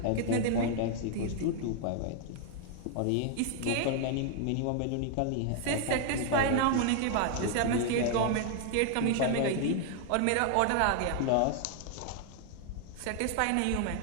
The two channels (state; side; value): different; both; correlation 0.00